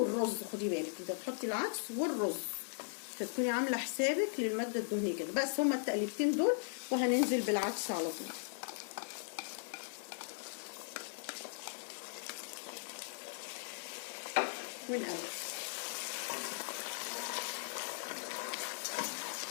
خدي بالك انت بتحطي العدس والرز، فتكوني عامله حسابك للماده الدهنيه كده. بس هما التقليبتين دول وهننزل بالعدس على طول. ونقلب،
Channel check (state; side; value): silent; right; digital silence